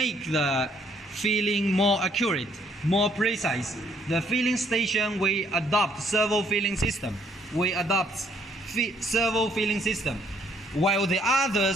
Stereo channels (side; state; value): both; normal; correlation 0.66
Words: the filling more accurate, more precise. The filling station, we adopt servo filling system. Servo filling system. While the